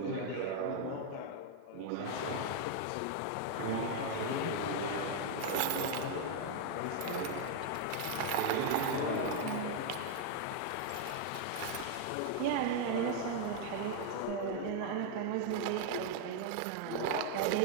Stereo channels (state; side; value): different; both; correlation 0.00